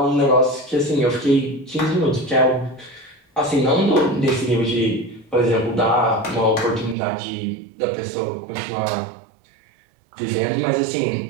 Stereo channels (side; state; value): left; drops out; at 7.0 s